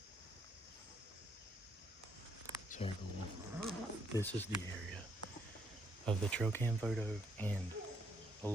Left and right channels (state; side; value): normal; both; correlation 0.72